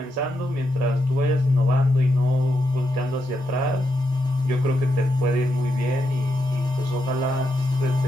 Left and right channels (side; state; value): both; normal; correlation 0.83